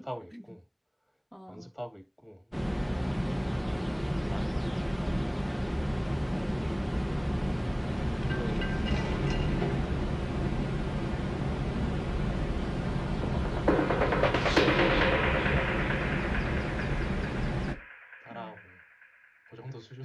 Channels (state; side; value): identical; both; correlation 1.00